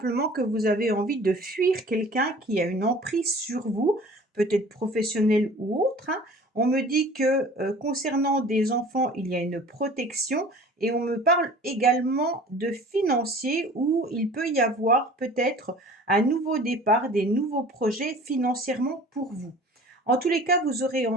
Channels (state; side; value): normal; both; correlation 0.45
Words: que vous avez envie de fuir quelqu'un qui a une emprise sur vous, peut-être professionnel ou autre, hein. On me dit que concernant des enfants, il y a une protection, et on me parle également de financier où il peut y avoir peut-être un nouveau départ, des nouveaux projets financièrement pour vous. En tous les cas, vous aurez